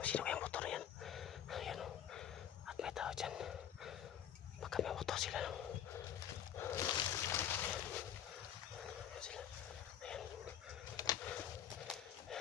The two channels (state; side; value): quieter; right; 9.7 dB